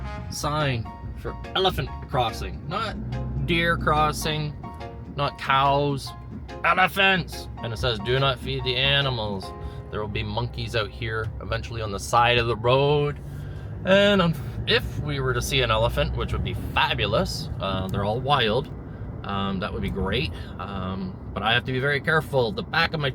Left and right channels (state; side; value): identical; both; correlation 1.00